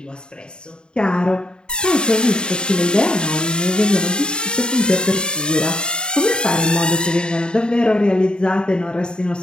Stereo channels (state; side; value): late; right; 0.049 ms